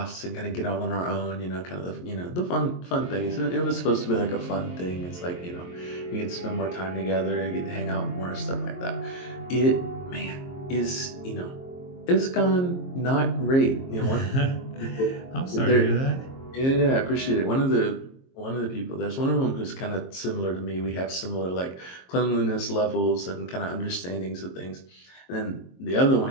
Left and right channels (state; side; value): late; right; 22 ms